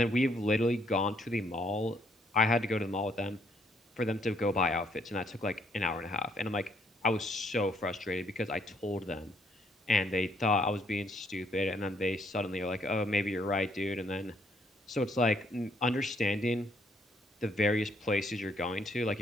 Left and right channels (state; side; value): normal; both; correlation 0.69